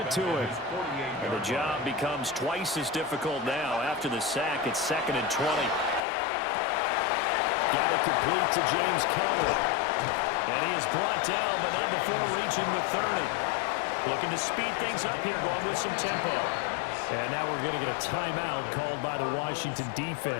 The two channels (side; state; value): right; drops out; at 6.0 s